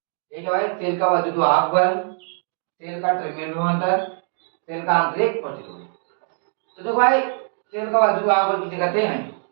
ठीक है भाई, तेल का वैद्युत वाहक बल, तेल का टर्मिनल विभवांतर, तेल का आंतरिक प्रतिरोध। तो देखो भाई, तेल का वैद्युत वाहक बल किसे कहते हैं?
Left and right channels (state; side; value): silent; left; 64 dB below the other